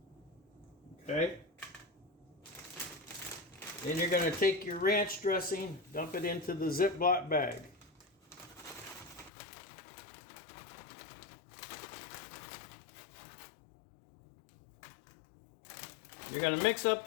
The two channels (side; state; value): right; drops out; at 9.3 s